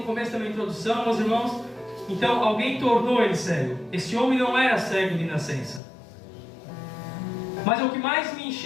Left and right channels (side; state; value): right; drops out; at 5.8 s